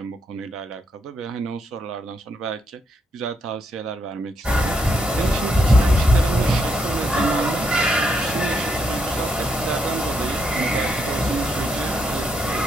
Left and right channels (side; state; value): both; normal; correlation 0.78